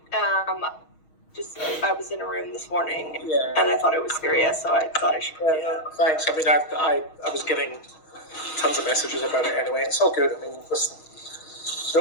I was in a room this morning, and I thought it was serious, so I thought I should. Thanks. I mean, I was getting tons of messages about it anyway. It's all good. I mean, listen,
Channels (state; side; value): late; right; 6.3 ms